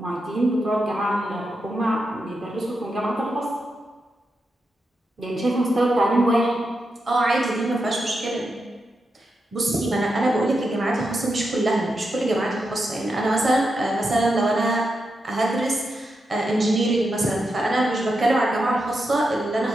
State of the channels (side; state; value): both; normal; correlation 0.86